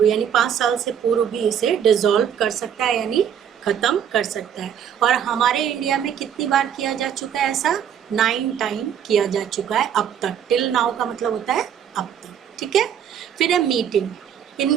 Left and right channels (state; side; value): quieter; left; 8.8 dB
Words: यानी 5 साल से पूर्व भी इसे डिसॉल्व कर सकता है यानी ख़त्म कर सकता है। और हमारे इंडिया में कितनी बार किया जा चुका है ऐसा? 9 टाइम किया जा चुका है अब तक। टिल नाउ का मतलब होता है अब तक। ठीक है, फिर है मीटिंग।